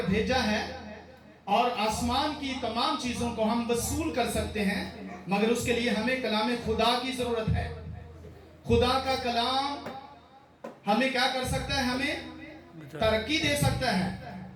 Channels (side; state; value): both; identical; correlation 1.00